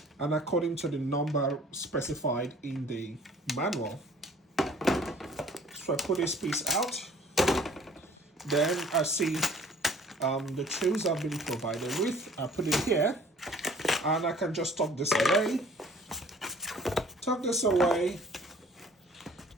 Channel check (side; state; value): both; normal; correlation 0.52